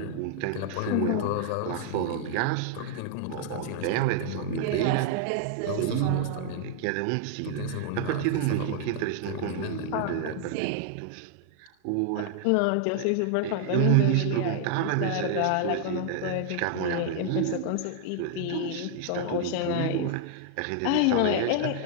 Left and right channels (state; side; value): different; both; correlation 0.00